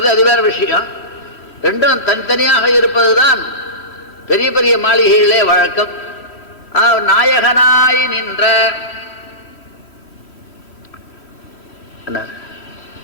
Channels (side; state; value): right; late; 3.1 ms